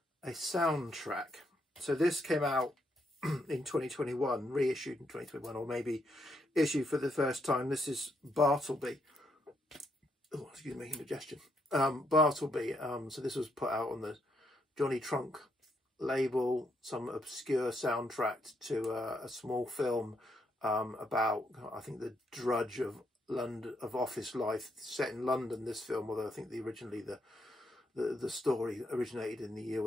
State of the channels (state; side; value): normal; both; correlation 0.77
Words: soundtrack. So this came out in 2021, reissued in 2021, or maybe issued for the first time. This is Bartleby. Oh, excuse me, indigestion. Bartleby. So this was put out on the Johnny Trunk label, some obscure soundtrack to a small film about, I think, the drudge of London, of office life, set in London. This film, although I think originally the story originated in the